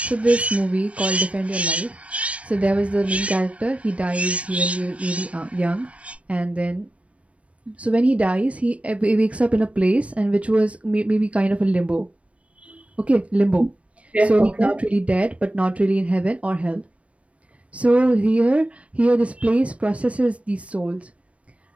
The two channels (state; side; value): late; left; 0.065 ms